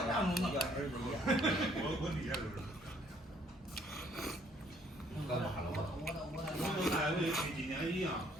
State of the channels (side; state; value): both; normal; correlation 0.64